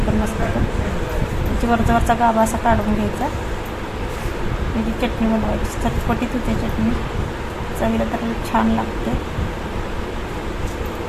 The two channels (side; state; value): both; identical; correlation 1.00